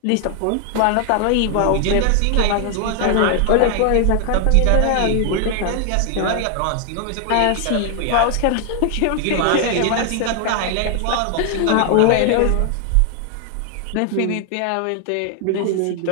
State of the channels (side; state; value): both; different; correlation 0.00